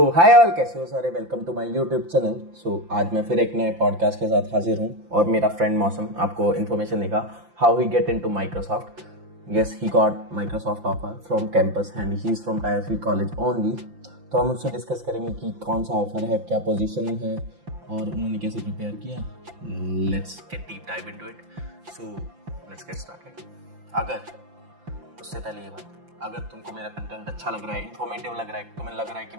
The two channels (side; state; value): left; late; 5.8 ms